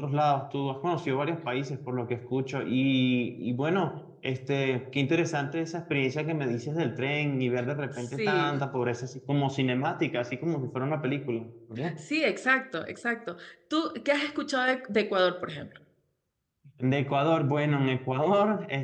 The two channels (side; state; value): both; identical; correlation 1.00